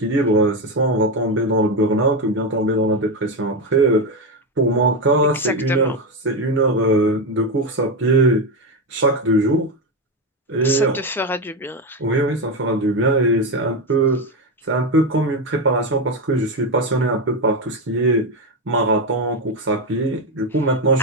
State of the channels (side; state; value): both; normal; correlation 0.12